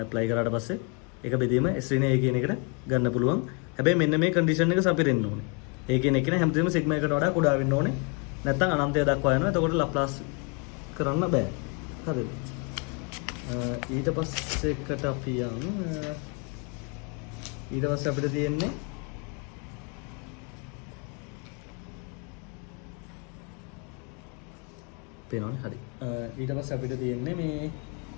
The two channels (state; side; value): quieter; right; 33.8 dB